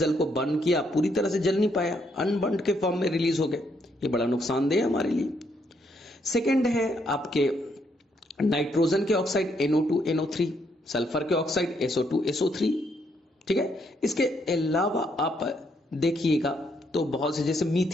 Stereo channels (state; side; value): normal; both; correlation 0.74